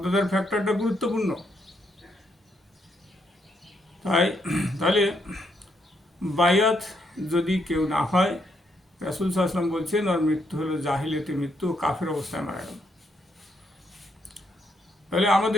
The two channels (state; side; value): normal; both; correlation 0.76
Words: ফ্যাক্টরটা গুরুত্বপূর্ণ। তাহলে বায়াত যদি কেউ না হয়, রাসূল সাল্লাল্লাহু আলাইহি ওয়াসাল্লাম বলছেন ওর মৃত্যু হলো জাহিলিয়াতের মৃত্যু, কাফের অবস্থায় মারা গেল। তাহলে